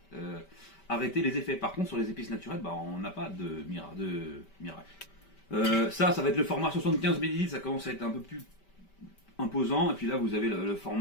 arrêter les effets. Par contre sur les épices naturelles, bah, on n'a pas de miracle. Ça va être le format 75 ml, ça commence à être un peu plus imposant, et puis là vous avez le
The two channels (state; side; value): late; right; 5.1 ms